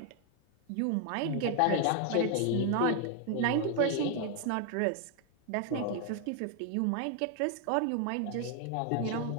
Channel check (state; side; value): different; both; correlation 0.00